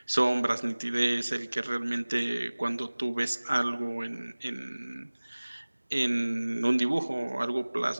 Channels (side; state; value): both; inverted; correlation -1.00